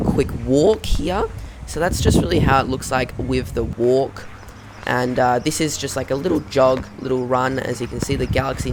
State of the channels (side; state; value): both; identical; correlation 1.00